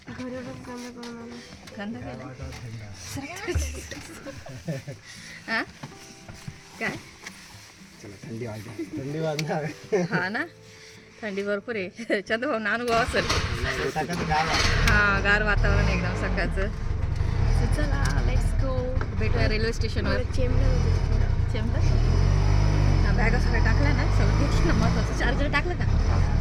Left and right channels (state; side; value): identical; both; correlation 1.00